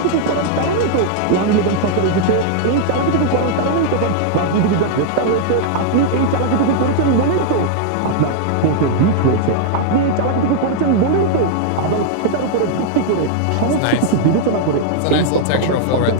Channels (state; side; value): different; both; correlation -0.01